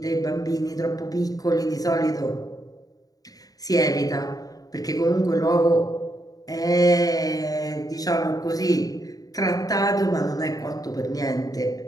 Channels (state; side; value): late; right; 0.18 ms